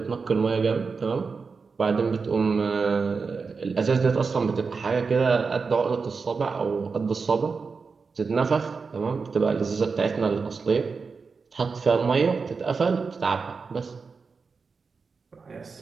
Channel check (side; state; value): left; quieter; 4.9 dB